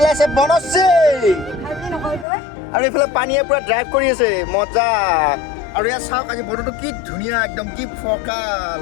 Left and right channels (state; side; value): drops out; right; at 2.2 s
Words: আছে বনশ্ৰী, আৰু এইফালে পানীয়ে পুৰা ড্ৰাইভ কৰি আছে, মজা। আৰু ইয়াত চাওক আজি বতৰটো কি ধুনীয়া, একদম কি ফৰকাল।